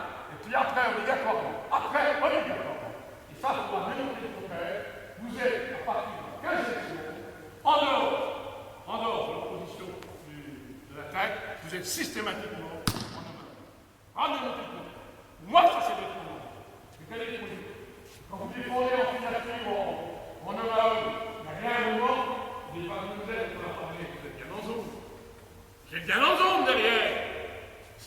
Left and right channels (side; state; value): both; identical; correlation 1.00